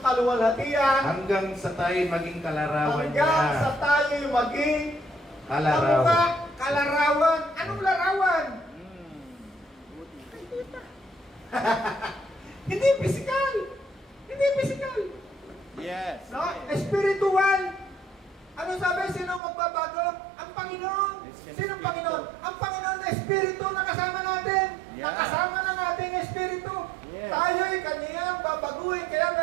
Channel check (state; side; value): drops out; left; at 19.4 s